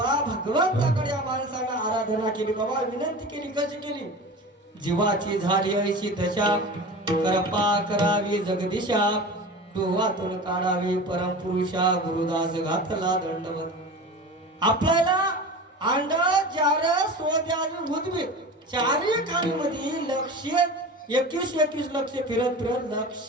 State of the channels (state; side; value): normal; both; correlation 0.33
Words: भगवंताकडे या माणसानं आराधना केली, बाबा विनंती केली. कशी केली? जीवाची झाली ऐशी दशा, कृपा करावी जगदीशा, डोहातून काढावी परमपुरुषा, गुरुदास घातला दंडवत. आपल्याला अंड जार सोद्यावी भूतबी चारी खाणीमध्ये लक्ष 21 लक्ष फिरत फिरत